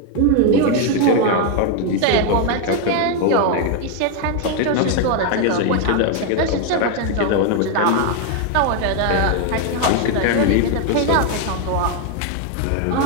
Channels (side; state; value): both; different; correlation 0.01